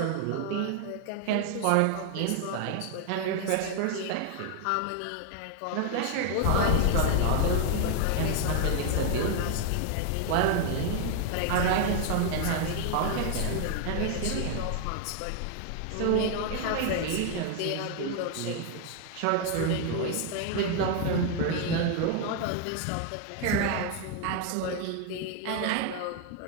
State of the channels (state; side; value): different; both; correlation 0.00